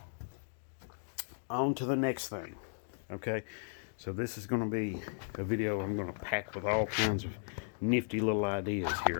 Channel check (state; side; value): silent; right; digital silence